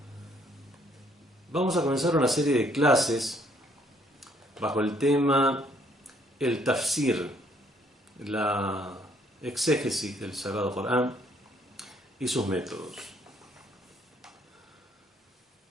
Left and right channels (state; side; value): normal; both; correlation 0.66